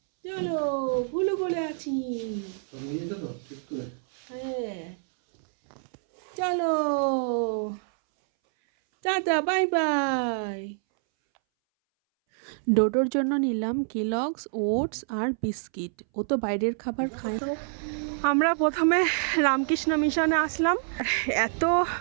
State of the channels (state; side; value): silent; left; 60 dB below the other